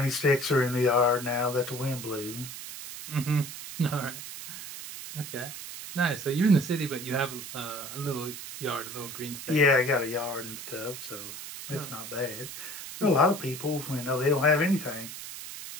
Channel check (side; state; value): right; noise; hiss, 10 dB below the sound